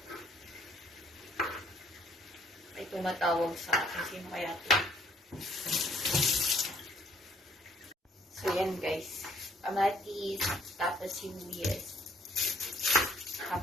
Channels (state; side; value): normal; both; correlation 0.62